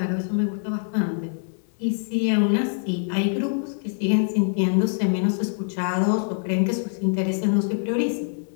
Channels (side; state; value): right; silent; digital silence